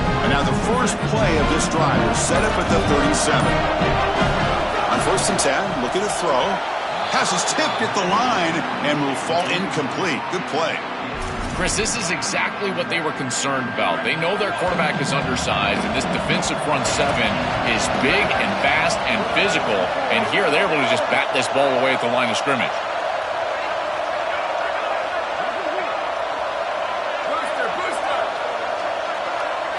And now the first play of this drive is set up at the 37. On first and 10, looking to throw. Pass is tipped at the line and will fall incomplete. Good play. Chris, this is exactly what they were concerned about. They know their quarterback is undersized, and this defensive front seven is big and fast and physical. And here they're able to just bat this ball away at the line of scrimmage.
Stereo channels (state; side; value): identical; both; correlation 1.00